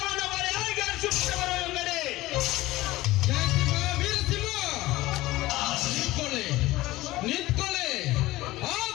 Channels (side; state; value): right; quieter; 18.0 dB